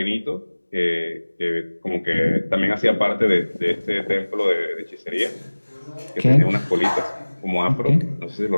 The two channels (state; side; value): inverted; both; correlation -1.00